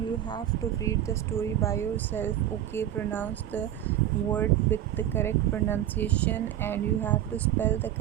have to read the story by yourself. Okay, pronounce the word with the correct pronunciation, and you have to spell the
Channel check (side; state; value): left; quieter; 11.8 dB